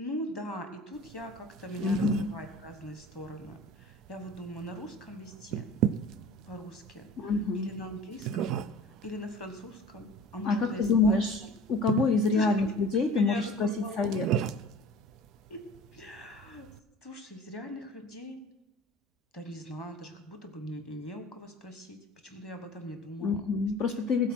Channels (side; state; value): both; normal; correlation 0.43